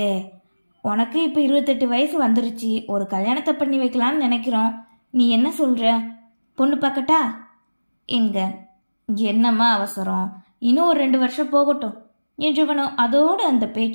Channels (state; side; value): inverted; both; correlation -1.00